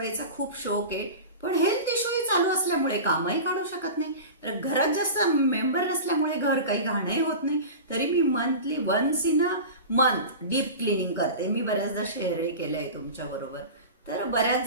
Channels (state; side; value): inverted; both; correlation -0.31